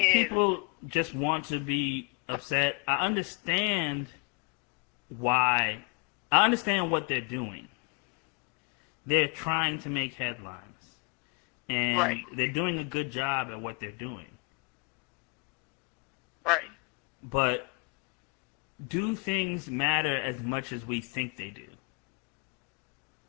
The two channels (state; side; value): quieter; right; 33.4 dB